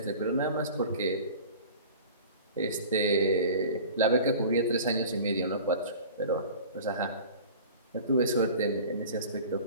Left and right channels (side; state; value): both; inverted; correlation -0.40